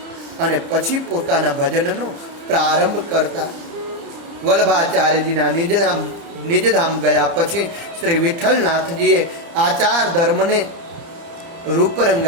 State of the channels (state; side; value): late; left; 30 ms